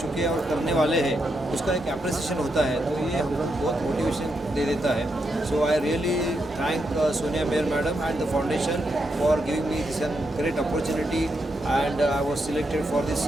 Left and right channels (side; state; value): both; normal; correlation 0.82